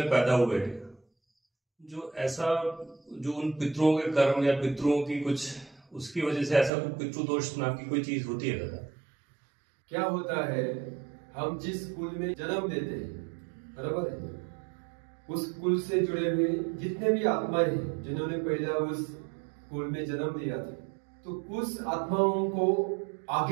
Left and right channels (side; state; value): left; drops out; at 6.7 s